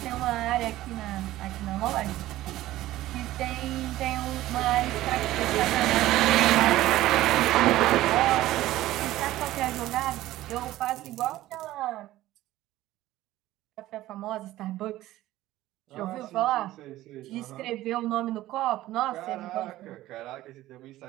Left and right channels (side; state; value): left; quieter; 15.5 dB